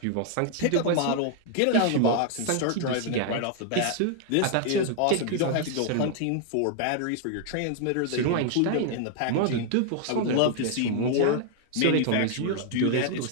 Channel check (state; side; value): different; both; correlation 0.00